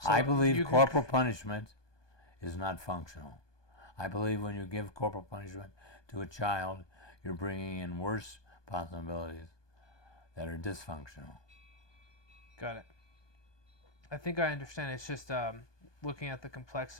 I So believe you corporal punishment is not functional. I believe when you give corporal punishment to a child, you're bringing in worse possibilities that are dysfunctional. Got it. I think I understand. It's just looking at the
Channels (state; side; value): late; right; 1.2 ms